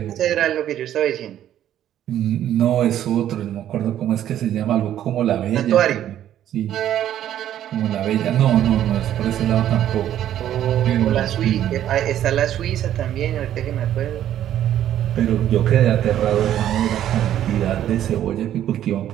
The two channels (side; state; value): left; quieter; 11.4 dB